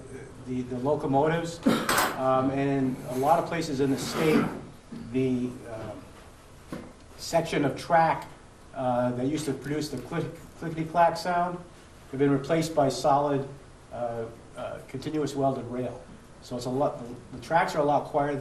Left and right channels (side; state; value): both; identical; correlation 1.00